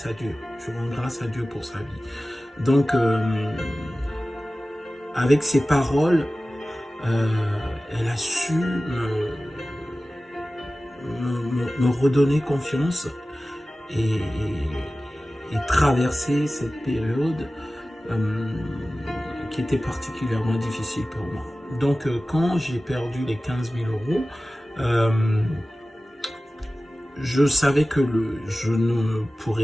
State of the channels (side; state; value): both; normal; correlation 0.96